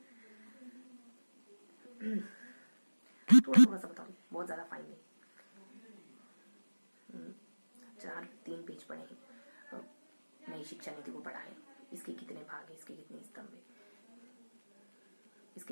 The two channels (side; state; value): both; inverted; correlation -1.00